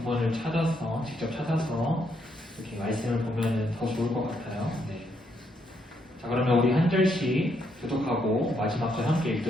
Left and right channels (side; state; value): both; normal; correlation 0.76